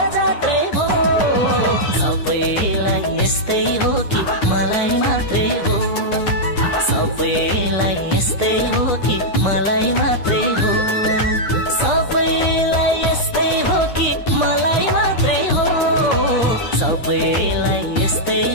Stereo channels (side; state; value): right; late; 9.8 ms